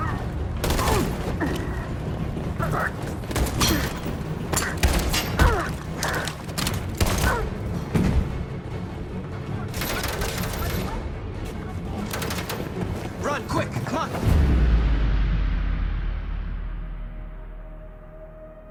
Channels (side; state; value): both; identical; correlation 1.00